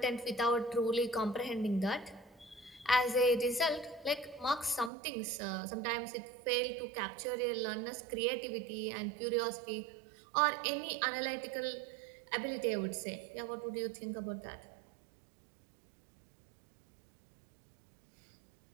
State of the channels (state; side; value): drops out; left; at 4.9 s